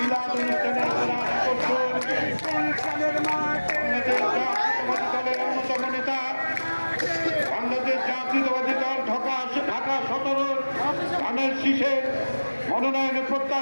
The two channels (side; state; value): both; inverted; correlation -1.00